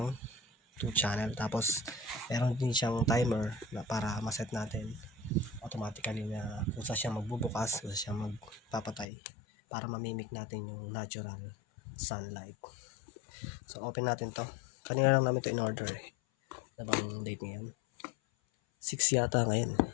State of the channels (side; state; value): right; drops out; at 9.1 s